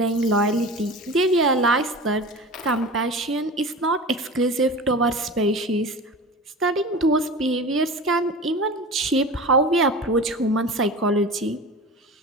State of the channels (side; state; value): both; normal; correlation 0.33